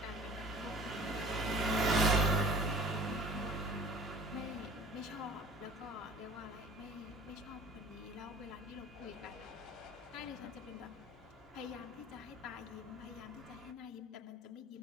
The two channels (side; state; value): both; normal; correlation 0.45